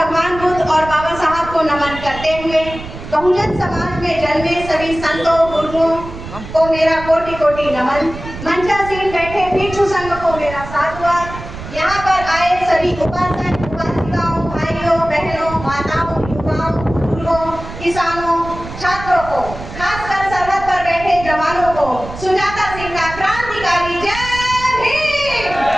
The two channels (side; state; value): right; noise; rumble, 12 dB below the sound